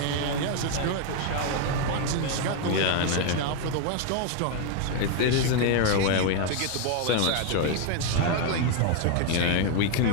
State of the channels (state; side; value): different; both; correlation 0.01